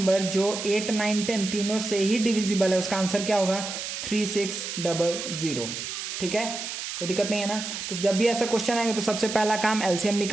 जो 8, 9, 10 तीनों से ही डिविजिबल है, उसका आंसर क्या होगा, 3600। ठीक है, कोई दिक्कत नहीं है ना? तो जब भी ऐसा क्वेश्चन आएगा तो सबसे पहला काम एलसीएम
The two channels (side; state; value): right; noise; hiss, 6 dB below the sound